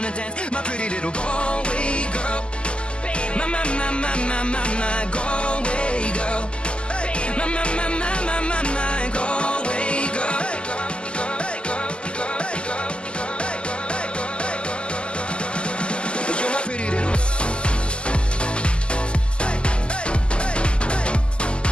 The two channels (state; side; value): late; right; 0.051 ms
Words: dance, my pretty little Galway girl. My Galway girl. My Galway girl. You're my pretty little.